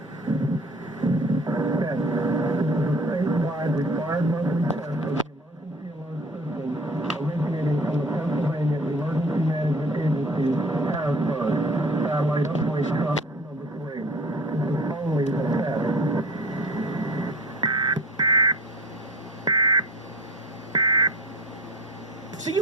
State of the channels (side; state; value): both; normal; correlation 0.42